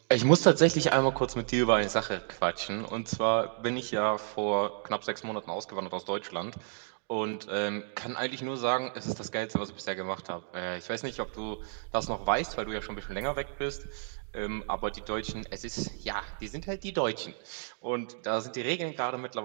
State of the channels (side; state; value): left; silent; 57 dB below the other